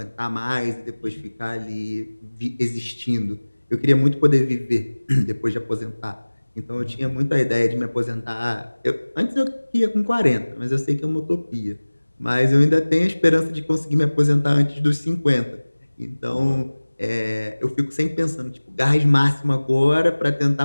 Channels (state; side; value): inverted; both; correlation -1.00